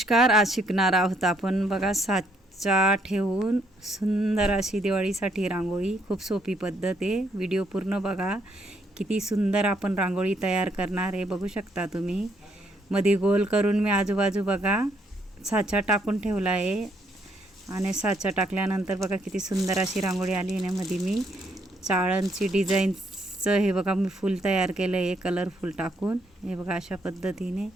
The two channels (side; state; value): both; normal; correlation 0.71